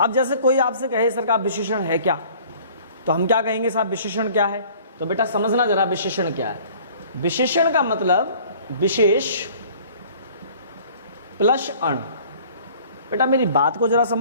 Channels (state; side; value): inverted; both; correlation -0.51